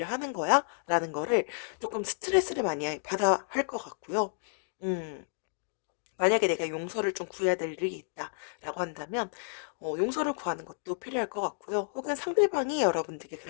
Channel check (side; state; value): right; silent; digital silence